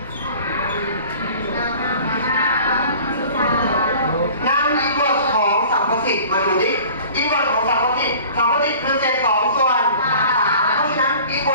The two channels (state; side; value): inverted; both; correlation -0.45